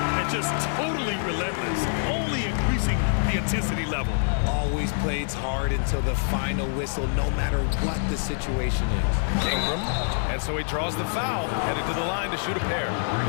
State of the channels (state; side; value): silent; right; digital silence